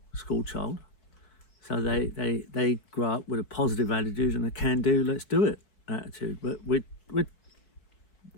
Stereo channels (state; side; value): late; right; 4.6 ms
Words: school child, so they grow up with a positive attitude and a can-do, let's do it attitude. But